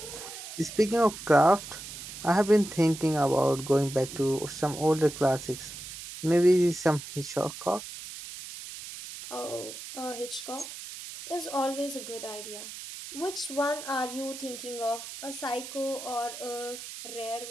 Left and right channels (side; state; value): right; noise; hiss, 11 dB below the sound